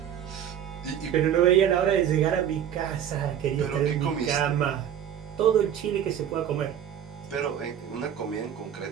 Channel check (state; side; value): quieter; left; 9.5 dB